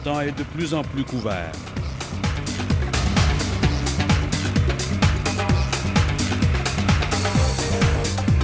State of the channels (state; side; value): identical; both; correlation 1.00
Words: temps est de plus en plus couvert.